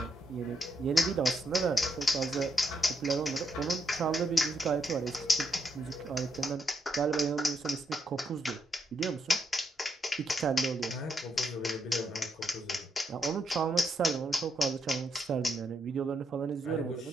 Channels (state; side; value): normal; both; correlation 0.78